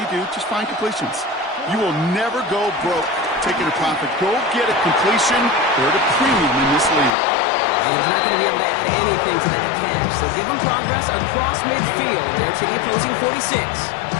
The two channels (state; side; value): drops out; right; at 7.1 s